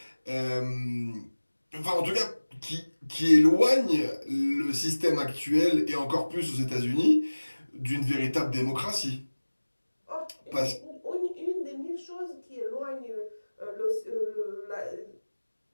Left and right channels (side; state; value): both; inverted; correlation -1.00